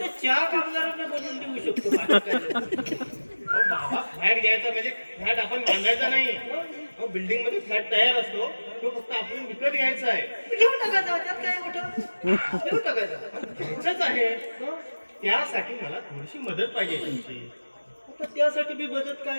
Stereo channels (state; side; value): inverted; both; correlation -1.00